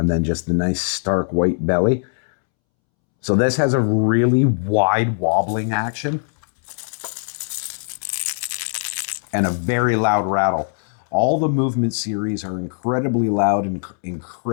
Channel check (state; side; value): silent; right; 65 dB below the other